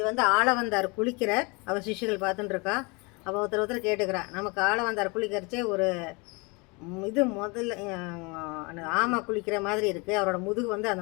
வந்து ஆள வந்தார் குளிக்கிறார். அவர் சிஷ்யர்கள் பார்த்துட்டுருக்கா. அவள் ஒருத்தர் கேட்டுக்கிறா, நமக்கு ஆள வந்தார் குளிக்கிறச்சே ஒரு இது முதல்ல ஆமை குளிக்கிற மாதிரி இருக்குது, அவரோட முதுகு வந்து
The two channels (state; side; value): quieter; right; 28.5 dB